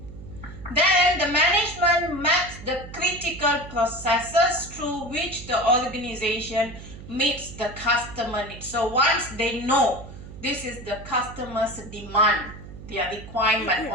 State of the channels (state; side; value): noise; right; hum, 14 dB below the sound